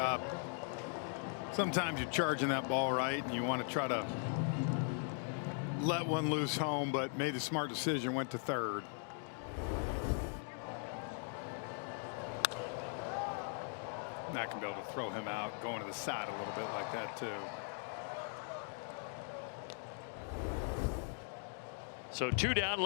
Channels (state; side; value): silent; right; 51 dB below the other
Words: Sometimes you're charging that ball right and you want to try to let one loose home, but made a smart decision, went to third. Not going to be able to throw him out, going to the side a little bit like that too. So 2 down.